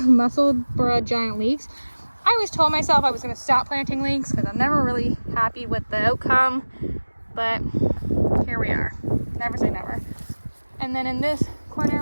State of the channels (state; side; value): inverted; both; correlation -1.00